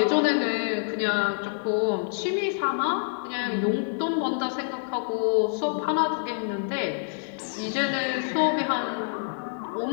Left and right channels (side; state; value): right; silent; digital silence